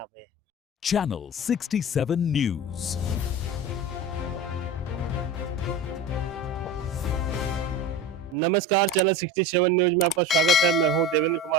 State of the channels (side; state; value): both; normal; correlation 0.31